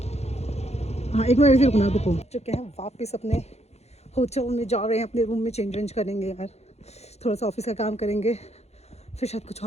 हाँ एक मिनट ऐसे रुकना, रुको। चुके हैं वापस अपने होटल में, जा रहे हैं अपने रूम में, चेंज वेंज करेंगे यार, थोड़ा सा ऑफिस का काम करेंगे, फिर शायद कुछ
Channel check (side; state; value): right; late; 0.31 ms